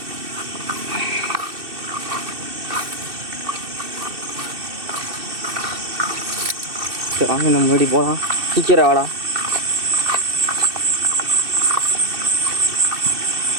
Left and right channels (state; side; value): late; left; 2.6 ms